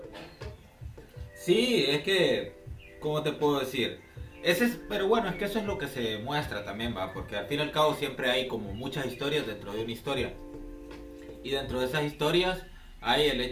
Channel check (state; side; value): identical; both; correlation 1.00